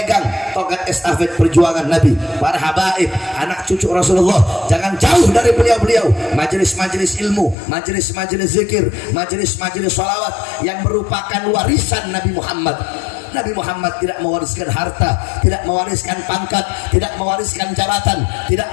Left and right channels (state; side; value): drops out; right; at 7.6 s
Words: tongkat estafet perjuangan Nabi, para habaib, anak cucu Rasulullah. Jangan jauh dari beliau-beliau. Majelis-majelis ilmu, majelis-majelis zikir, majelis-majelis sholawat yang merupakan warisan Nabi Muhammad. Nabi Muhammad tidak mewariskan harta, tidak mewariskan pangkat, tidak mewariskan jabatan, tidak